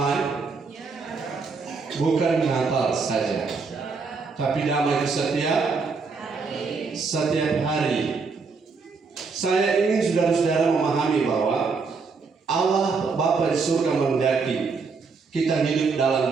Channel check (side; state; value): left; quieter; 4.7 dB